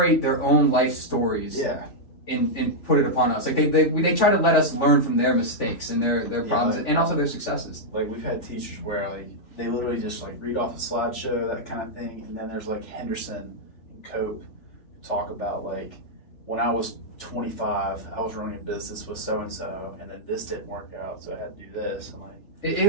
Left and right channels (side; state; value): right; late; 3.4 ms